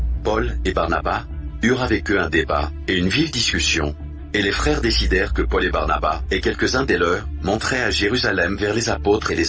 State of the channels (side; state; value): both; identical; correlation 1.00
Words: Paul et Barnabas eurent avec eux un débat et une vive discussion, et les frères décidèrent que Paul et Barnabas et quelques-uns des leurs monteraient à Jérusalem vers les apôtres et